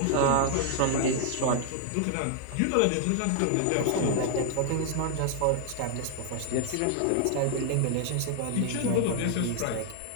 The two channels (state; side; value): different; both; correlation 0.00